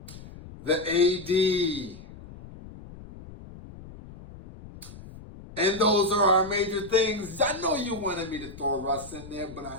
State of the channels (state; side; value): noise; left; rumble, 16 dB below the sound